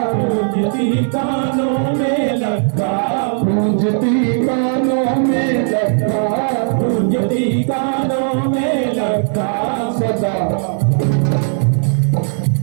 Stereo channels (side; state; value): left; silent; 59 dB below the other